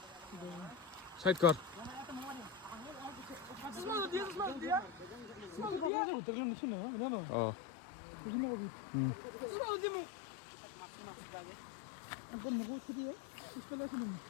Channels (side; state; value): right; drops out; at 5.9 s